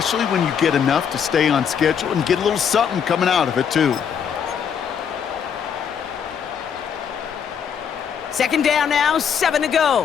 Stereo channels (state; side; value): quieter; right; 7.6 dB